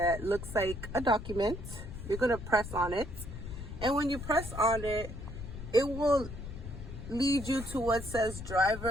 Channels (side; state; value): left; noise; rumble, 9 dB below the sound